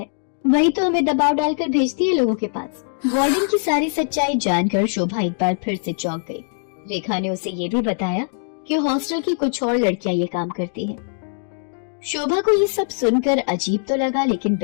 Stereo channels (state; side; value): silent; right; digital silence